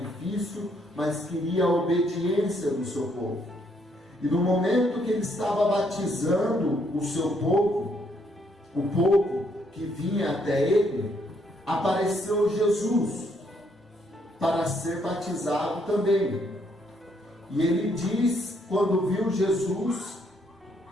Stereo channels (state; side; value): normal; both; correlation 0.71